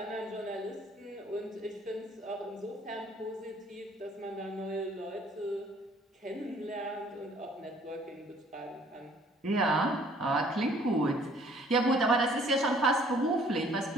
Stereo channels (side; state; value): both; normal; correlation 0.58